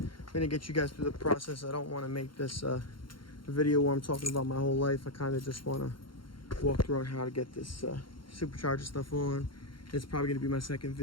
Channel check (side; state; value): right; late; 0.73 ms